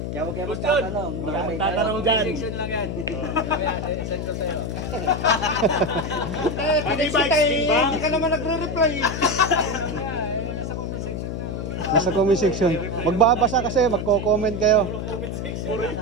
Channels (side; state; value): left; noise; hum, 4 dB below the sound